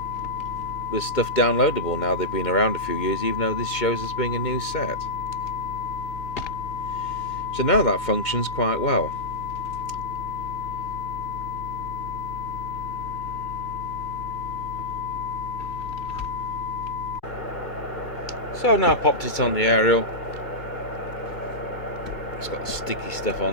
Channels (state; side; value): late; right; 2.4 ms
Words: there's stuff downloadable now. They've been around a few years, even though this shows as being a new set. So now that functions quite well. So I've now popped it on the aerial. It's got sticky stuff